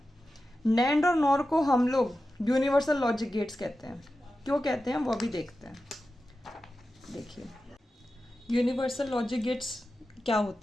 नैंड और नॉर को हम लोग यूनिवर्सल लॉजिक गेट्स कहते हैं। क्यों कहते हैं वो भी देखते हैं। देखिए, यूनिवर्सल लॉजिक गेट्स क्या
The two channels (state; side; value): normal; both; correlation 0.92